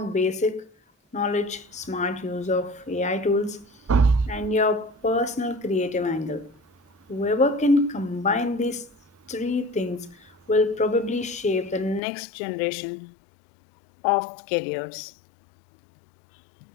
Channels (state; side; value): drops out; right; at 12.0 s